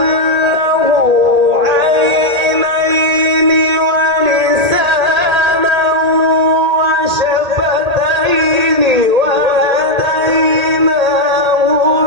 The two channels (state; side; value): late; left; 1.8 ms